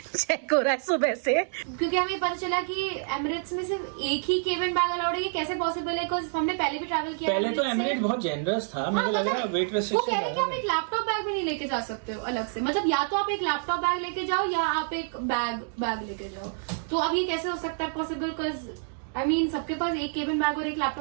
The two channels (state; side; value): silent; left; digital silence